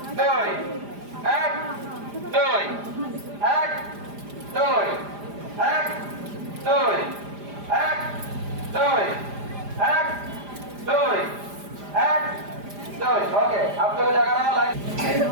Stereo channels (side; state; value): left; late; 4.9 ms